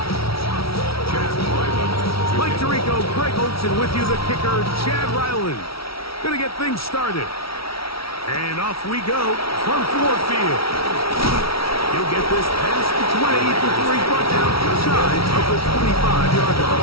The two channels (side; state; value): right; late; 0.75 ms